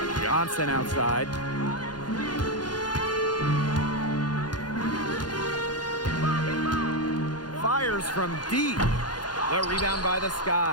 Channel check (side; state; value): right; late; 0.70 ms